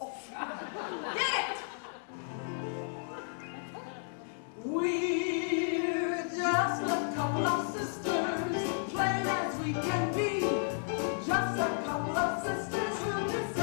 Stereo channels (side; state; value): right; silent; digital silence